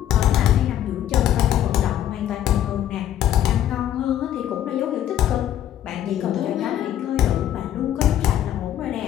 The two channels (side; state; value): right; quieter; 11.3 dB